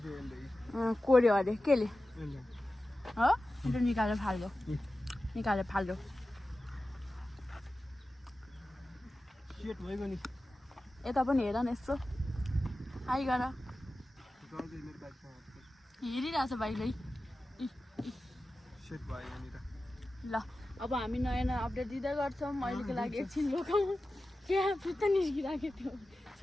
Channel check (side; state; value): both; normal; correlation 0.94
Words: कोर्यो अरे केले हो? त्यो निकालेर फाल्यो, निकालेर फाल्यो। यता पनि हेर न यसो। आइ गर। हेरिरहेको छ बाइकले। ल अब हामी नयाँ नयाँ अपडेट दिँदै गर्छौँ। अहिलेको लागि एकछिन रोकौँ। क्या फुत्त निस्किरहेको थियो